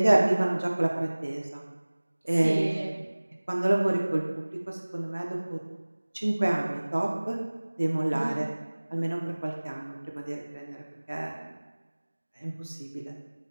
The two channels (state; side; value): inverted; both; correlation -1.00